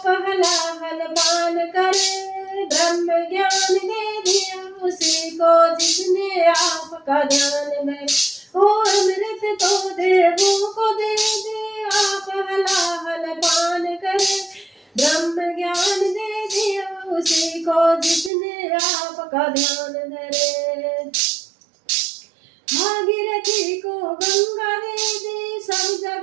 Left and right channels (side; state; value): left; drops out; at 18.3 s